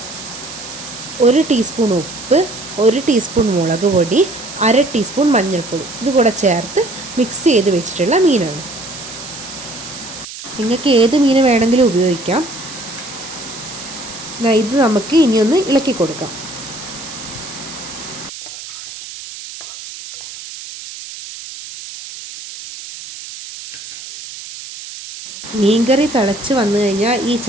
1 ടീസ്പൂൺ ഉപ്പ്, 1 ടീസ്പൂൺ മുളക് പൊടി, 1/2 ടീസ്പൂൺ മഞ്ഞൾപ്പൊടി ഇത് കൂടെ ചേർത്ത് മിക്സ് ചെയ്ത് വെച്ചിട്ടുള്ള മീനാണ്. നിങ്ങൾക്ക് ഏത് മീൻ വേണമെങ്കിലും ഉപയോഗിക്കാം. ഇത് നമുക്ക് ഇനിയൊന്ന് ഇളക്കി കൊടുക്കാം. മീൻകറി തിളച്ച് വന്നു കഴിഞ്ഞാൽ ഈ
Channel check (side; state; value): right; noise; hiss, 12 dB below the sound